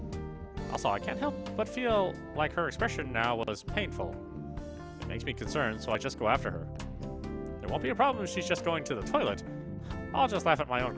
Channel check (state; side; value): identical; both; correlation 1.00